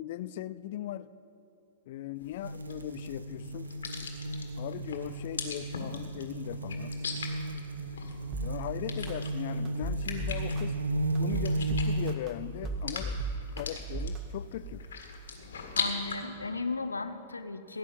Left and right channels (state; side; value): inverted; both; correlation -0.50